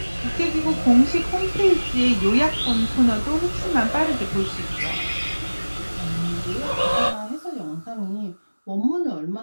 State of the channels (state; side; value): inverted; both; correlation -1.00